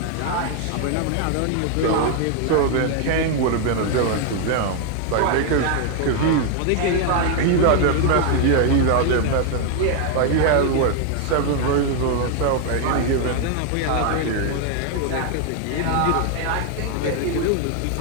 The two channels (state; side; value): different; both; correlation 0.01